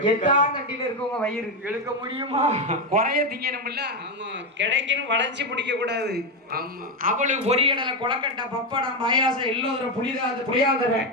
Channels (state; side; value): normal; both; correlation 0.10